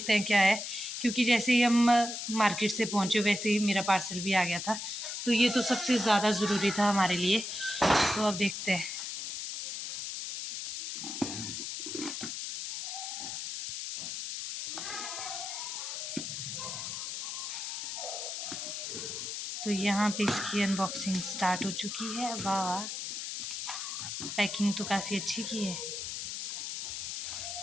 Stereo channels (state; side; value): noise; left; hiss, 5 dB below the sound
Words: हैं क्या है, क्योंकि जैसे ही हम मार्केट से पहुँचे वैसे ही मेरा पार्सल भी आ गया था। तो ये तो सबसे ज़्यादा ज़रूरी था हमारे लिए। तो अब देखते हैं। तो यहाँ पे इसकी अनबॉक्सिंग स्टार्ट हो चुकी है। वाह वाह, पैकिंग तो काफ़ी अच्छी की है।